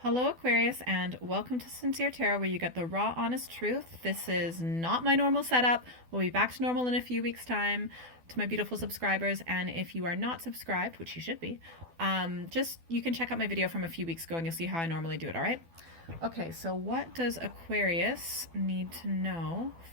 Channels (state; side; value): late; left; 12 ms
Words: Hello, Aquarius, and welcome to Sincere Tarot, where you get the raw, honest truth. This is not my normal setup. We'll be back to normal in a few weeks' time. To my beautiful subscribers, and if you are not subscribed, which you should be, just you can check out my video from a few weeks ago, and you'll see how I normally do it. All right. Okay. So, what does Aquarius need to know